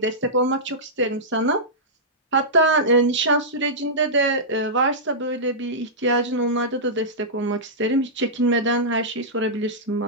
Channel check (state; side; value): normal; both; correlation -0.14